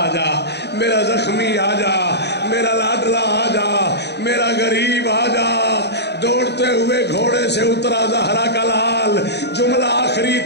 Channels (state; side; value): late; right; 0.49 ms